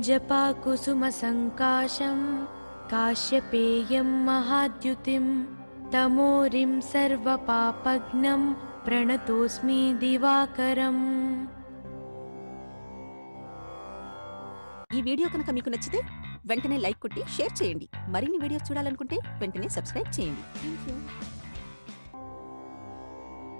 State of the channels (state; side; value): inverted; both; correlation -1.00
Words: जपाकुसुमसङ्काशं काश्यपेयं महाद्युतिं तमोरिं सर्वपापघ्नं प्रणतोऽस्मि दिवाकरम्। ఈ వీడియో కనుక మీకు నచ్చితే వెంటనే లైక్ కొట్టి షేర్ చేయండి. మరిన్ని వీడియోస్ చూడాలనుకుంటే వెంటనే సబ్స్క్రైబ్ చేయండి. థాంక్యూ.